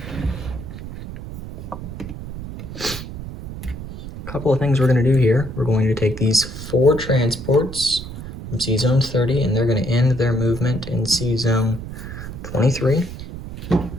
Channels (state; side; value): noise; right; rumble, 10 dB below the sound